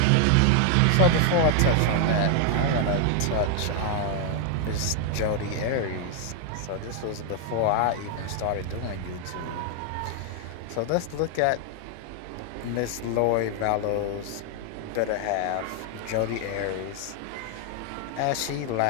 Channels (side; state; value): both; different; correlation 0.00